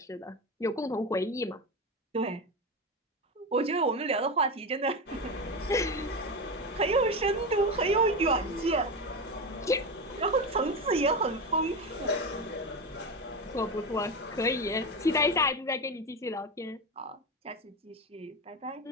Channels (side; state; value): both; normal; correlation 0.19